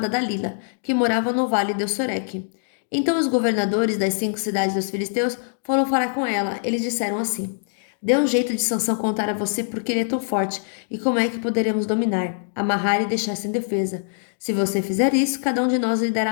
Dalila, que morava no vale de Soreque. Então os governadores das 5 cidades dos filisteus foram falar com ela. Eles disseram assim: Dê um jeito de Sansão contar a você porque ele é tão forte e como é que poderemos dominar, amarrar e deixar sem defesa. Se você fizer isso, cada um de nós lhe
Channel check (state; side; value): silent; right; digital silence